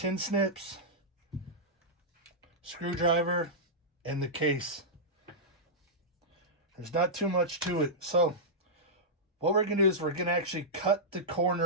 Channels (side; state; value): both; normal; correlation -0.11